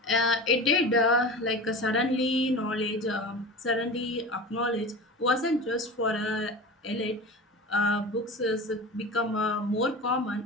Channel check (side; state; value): both; normal; correlation 0.31